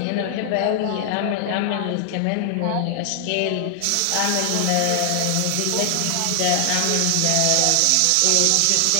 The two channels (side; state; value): both; different; correlation 0.00